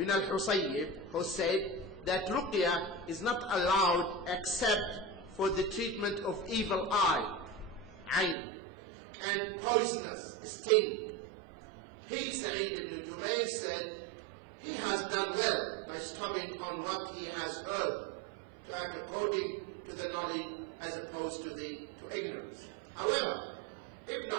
al-Husayyib, who said that ruqya is not allowed except for the treatment of evil eye, ayn, and poisonous sting. He, Sa'id ibn Jubayr, said he has done well by stopping on what he has heard to act according to the knowledge as opposed to ignorance. However, Ibn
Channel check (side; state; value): left; drops out; at 8.3 s